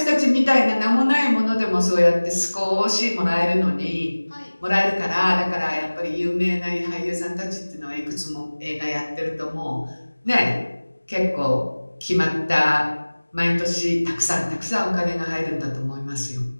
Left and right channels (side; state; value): both; inverted; correlation -1.00